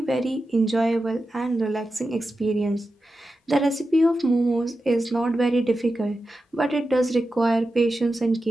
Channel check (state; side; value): normal; both; correlation 0.91